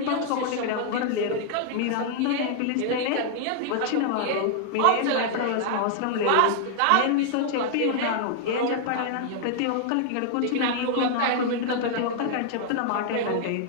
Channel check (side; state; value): both; different; correlation 0.00